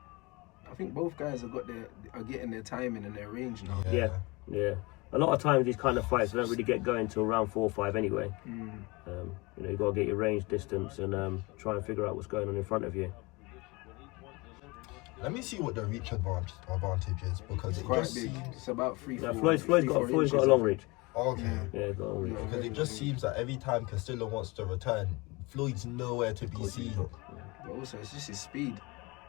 I think both guys are getting their timing and their range now. Yeah. A lot of times these kind of fights don't really get going till round 4 or 5 anyway. You've got to get your range distance and try and figure out what's going on in front of you. Let me see what the reach advantage is, because It's it quite just big. seems... It's about 3, Now 4 Floyd's got inches. a long reach. Okay. Yeah, he's got a long reach. Because it just seems that every time Castillo wants to return, Floyd's nowhere to be seen. But also, it's just his speed.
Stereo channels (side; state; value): right; quieter; 25.1 dB